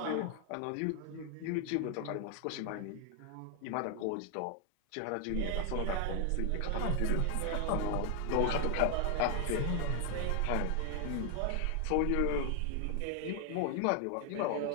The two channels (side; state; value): both; different; correlation 0.00